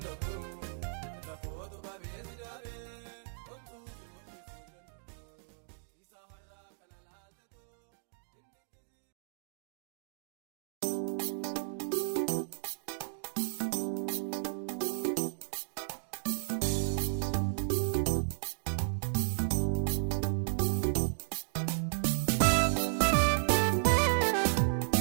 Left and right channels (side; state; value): left; silent; digital silence